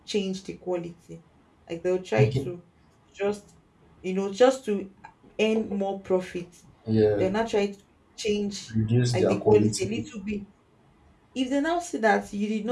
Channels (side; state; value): both; identical; correlation 1.00